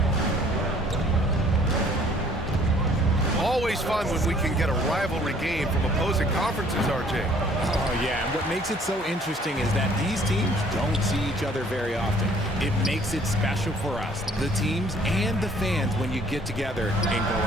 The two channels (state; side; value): normal; both; correlation 0.57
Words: Always fun when we can get a rivalry game from opposing conferences, RJ. Oh, yeah, and what makes it so interesting is that these teams don't see each other very often. It makes it special for us, the teams and the fans, when you get together and go